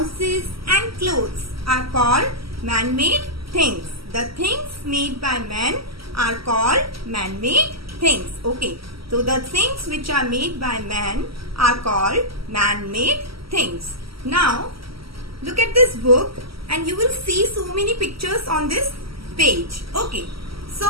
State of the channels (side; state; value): left; late; 0.75 ms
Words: and clothes are called man-made things. The things made by man are called man-made things. Okay. So the things which are made by man are called man-made things. Now look at this book and you will see so many pictures on this page. Okay. So